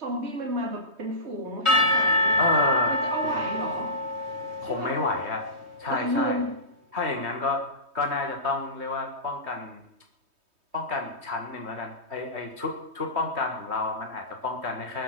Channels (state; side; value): late; left; 3.2 ms